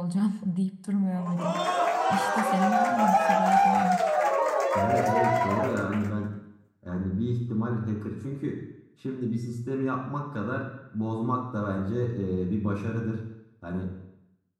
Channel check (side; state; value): both; identical; correlation 1.00